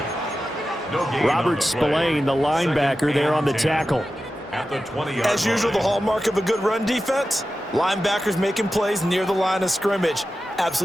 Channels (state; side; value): normal; both; correlation 0.93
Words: Robert Spillane, the linebacker, there on the tackle. As usual, the hallmark of a good run defense, linebackers making plays near the line of scrimmage.